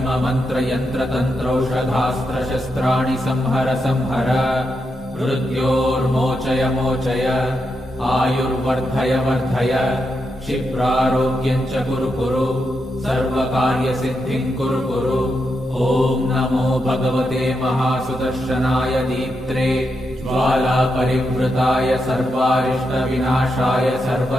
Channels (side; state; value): both; normal; correlation 0.84